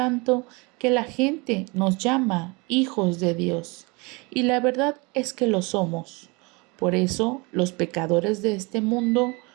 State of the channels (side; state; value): left; quieter; 27.6 dB